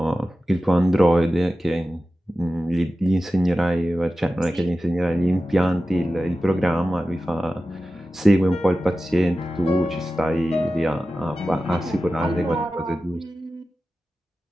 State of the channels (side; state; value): both; normal; correlation 0.94